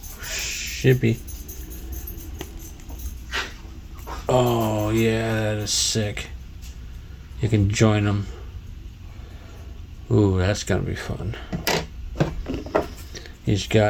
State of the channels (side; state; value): both; identical; correlation 1.00